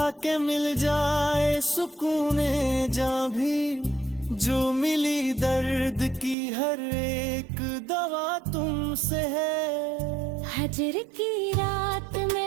कि मिल जाए सुकूने जहाँ भी, जो मिली दर्द की हर एक दवा तुमसे है। हजर की रात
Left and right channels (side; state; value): left; drops out; at 6.4 s